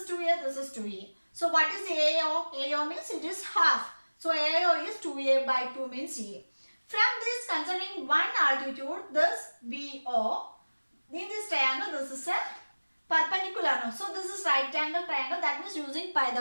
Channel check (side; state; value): both; inverted; correlation -1.00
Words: 2A, this is 2A. So what is AO? AO means it is half. So AO is 2A by 2 means A. From this, concerning one altitude, this BO, in this triangle, this is a perpendicular. No? So this is right angle triangle. That means using